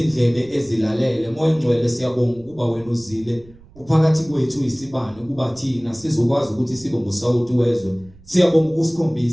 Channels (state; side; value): noise; right; rumble, 25 dB below the sound